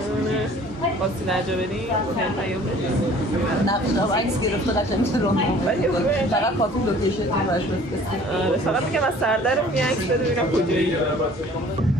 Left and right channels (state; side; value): normal; both; correlation 0.51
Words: خواستی درجا بریم؟ نه عکس گرفته قشنگ رو فقط کافی لوکیشن رو براش بفرستید. فقط میگم از سردرم یه عکس بده ببینم کجایی.